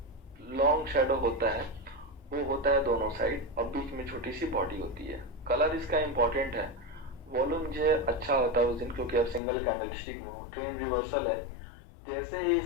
लॉन्ग शैडो होता है वो होता है दोनों साइड और बीच में छोटी सी बॉडी होती है। कलर इसका इंपॉर्टेंट है। वॉल्यूम जो है अच्छा होता है उस दिन, क्योंकि अब सिंगल कैंडलस्टिक में हो, ट्रेन रिवर्सल है। जैसे ही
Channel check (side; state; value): right; drops out; at 9.4 s